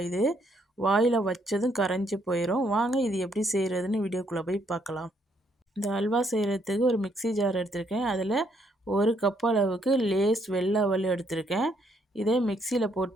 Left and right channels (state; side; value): normal; both; correlation 0.71